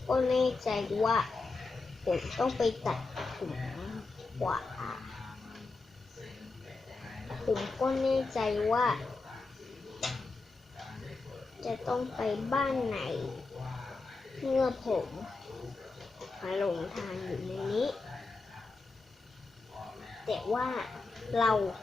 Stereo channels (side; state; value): right; quieter; 3.8 dB